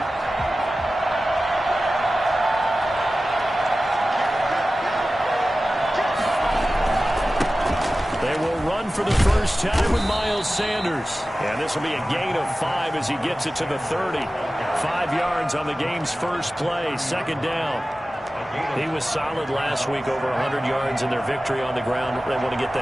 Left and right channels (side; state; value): both; normal; correlation 0.95